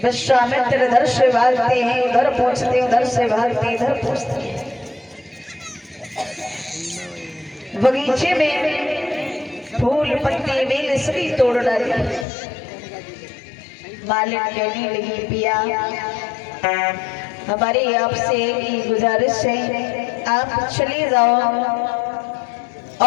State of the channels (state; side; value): drops out; right; at 12.2 s